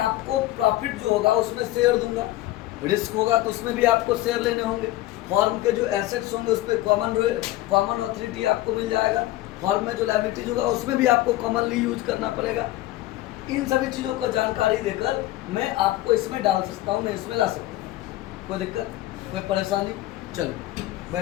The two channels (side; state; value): right; quieter; 16.3 dB